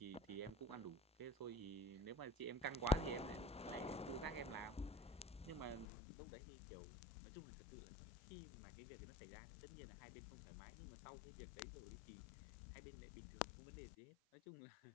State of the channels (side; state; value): right; drops out; at 5.9 s